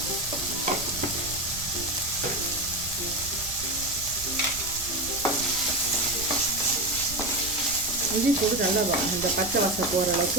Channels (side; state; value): right; noise; rumble, 13 dB below the sound